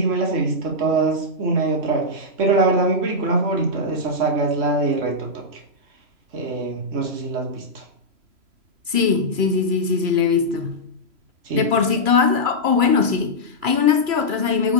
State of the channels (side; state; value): left; late; 2.4 ms